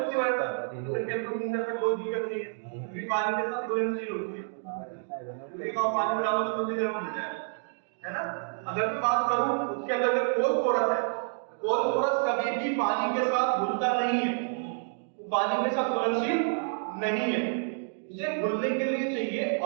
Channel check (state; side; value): silent; left; digital silence